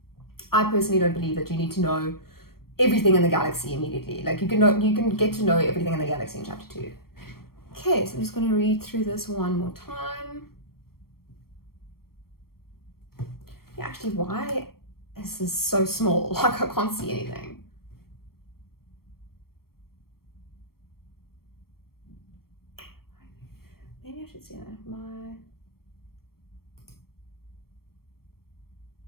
I personally don't believe that you need to know everything in the galaxy immediately. Like you can get to know everything in the galaxy in chapter 2. Okay, so I'm just gonna read through this one more time. Yeah, actually, why is this so small? Like I can't see anything. Maybe I should see that.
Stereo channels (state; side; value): late; right; 0.94 ms